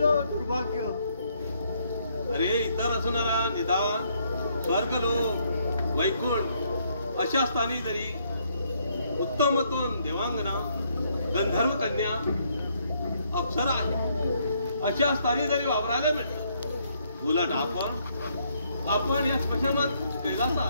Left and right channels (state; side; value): inverted; both; correlation -0.71